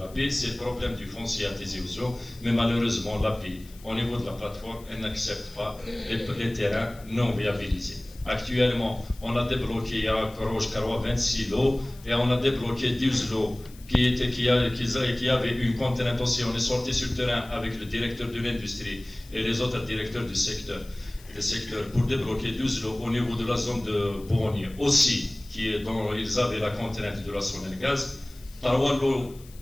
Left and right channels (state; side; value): noise; left; hiss, 23 dB below the sound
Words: c'est le problème du foncier à Tizi Ouzou, mais malheureusement l'API, au niveau de la plateforme, elle n'accepte pas les terrains non viabilisés. Actuellement, on a débloqué à Korosh-Karoua 26 lots et on a débloqué 12 lots qui avaient une contrainte aussi. On est sorti sur le terrain avec le directeur de l'industrie et les autres directeurs du secteur. Pour débloquer 12 lots au niveau de la zone de Bourgogne aussi, dont ils avaient la contrainte de la Sonelgaz, 3